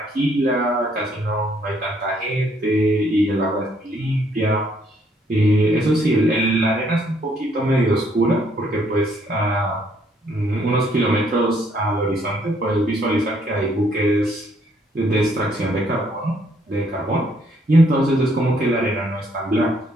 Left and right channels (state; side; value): normal; both; correlation 0.68